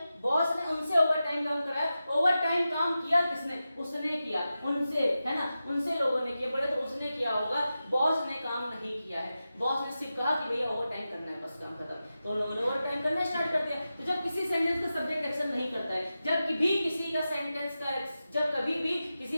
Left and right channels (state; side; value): inverted; both; correlation -0.92